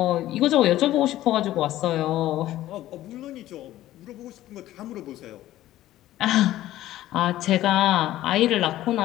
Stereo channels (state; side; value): quieter; right; 14.4 dB